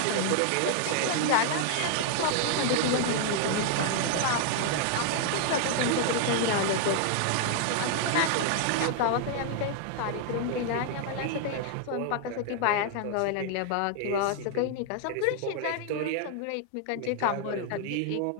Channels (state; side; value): different; both; correlation 0.00